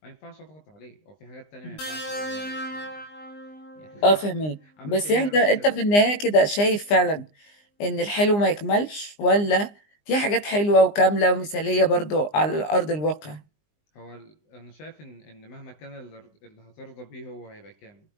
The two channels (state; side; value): late; right; 20 ms